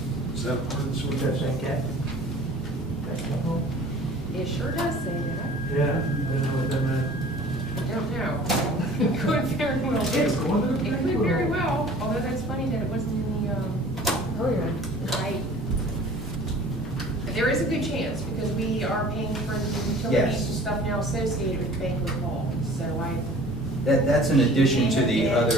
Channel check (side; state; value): both; normal; correlation 0.47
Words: Is that ordinance? What does that say, Cat? Banquet hall? It sure does say that. Yeah, I didn't know what that meant. I don't know. It could very well be. It's going to the It could very well, although that's funny that it wasn't in the, Oh, yeah. right. But there is a good chance, because we are paying for the utilities Yes. and stuff now associated with banquet hall, so That's in addition to the Yeah,